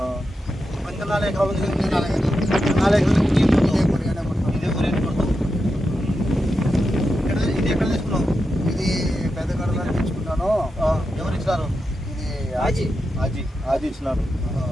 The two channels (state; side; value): normal; both; correlation 0.88